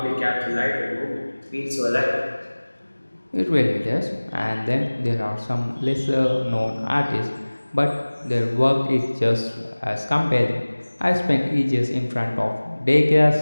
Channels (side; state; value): both; inverted; correlation -1.00